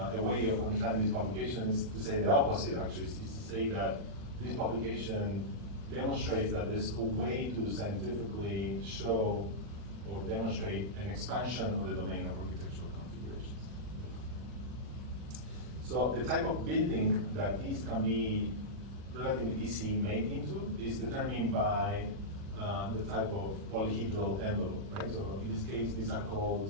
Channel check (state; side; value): late; left; 40 ms